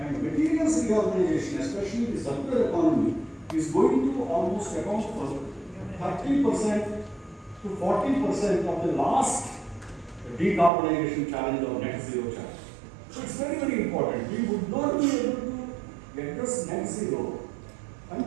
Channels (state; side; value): drops out; left; at 10.7 s